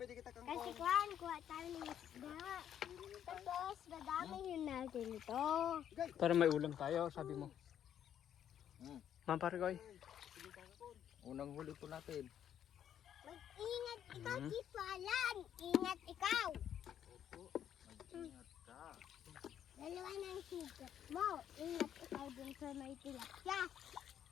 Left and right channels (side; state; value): right; quieter; 9.8 dB